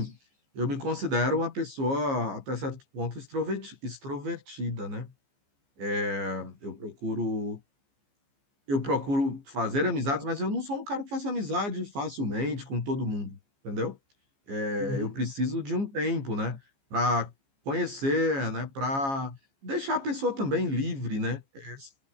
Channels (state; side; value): late; left; 15 ms